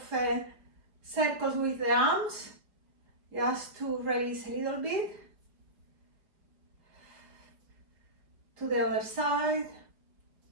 circles with the arms, just to release a little bit. To the other side.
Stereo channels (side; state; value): left; late; 4.9 ms